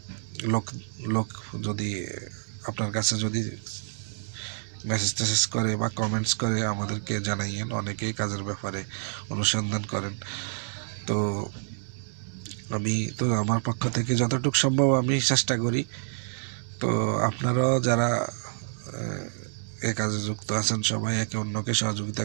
লোক যদি আপনার কাছে যদি মেসেজ করে বা কমেন্টস করে, আমাদেরকে জানাইয়েন। অনেকেই কাজের ব্যাপারে অনুসন্ধান করেন। তো আমি তো আমার পক্ষ থেকে যতটুকু সম্ভব আমি চেষ্টা করি। তো আপনারাও যারা এ কাজে যুক্ত আছেন, সবাই একে অন্যকে সহযোগিতা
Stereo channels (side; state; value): left; silent; digital silence